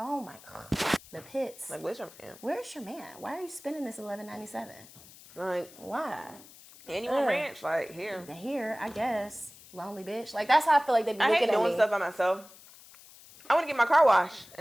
my God. The pits. Like, where's your man? Where's your man? Why are you spending this $11.97? Like, why? And you want ranch? Like, here. Here, I guess. Lonely bitch. Like, that's how I feel like they be looking at me. I hate doing stuff by myself. I want to get my car washed.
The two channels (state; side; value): noise; left; hiss, 21 dB below the sound